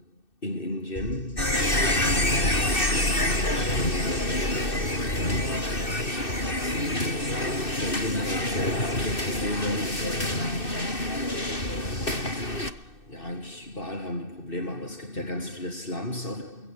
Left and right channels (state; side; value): late; right; 2.6 ms